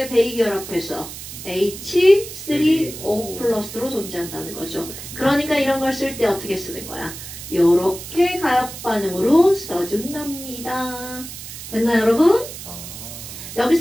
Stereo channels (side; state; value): right; noise; hiss, 11 dB below the sound